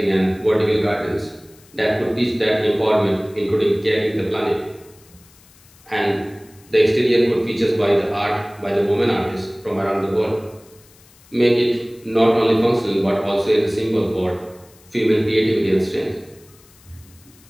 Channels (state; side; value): noise; left; hiss, 27 dB below the sound